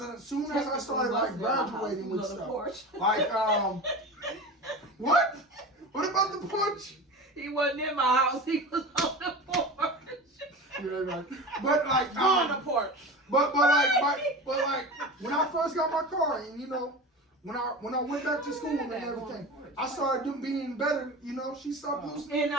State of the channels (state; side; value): normal; both; correlation 0.30